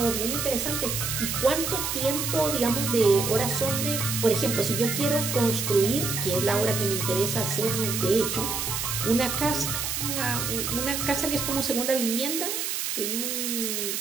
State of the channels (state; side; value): noise; right; hiss, 2 dB below the sound